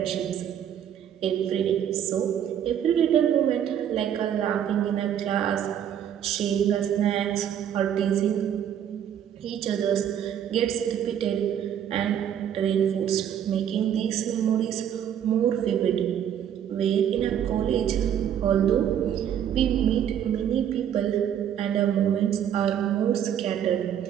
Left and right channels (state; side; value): quieter; left; 9.5 dB